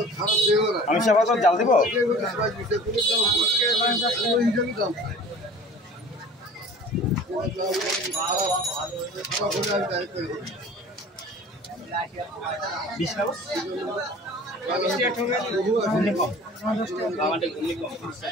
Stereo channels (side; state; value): both; normal; correlation 0.44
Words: আমি সেবা জাল দিব